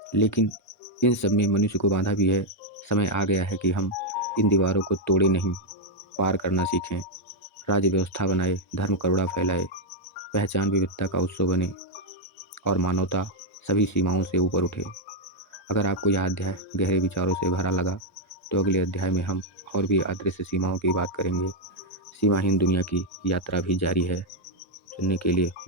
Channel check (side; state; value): both; normal; correlation 0.00